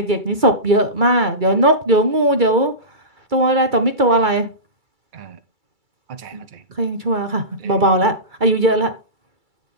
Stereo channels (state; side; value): late; left; 2.3 ms